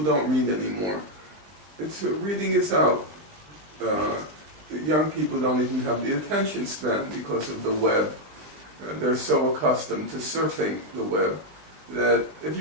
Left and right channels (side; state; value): left; late; 20 ms